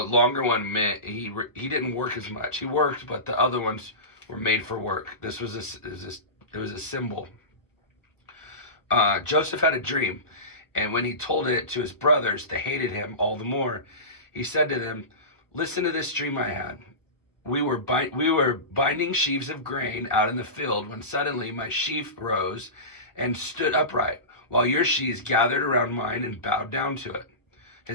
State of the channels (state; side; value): late; right; 1.2 ms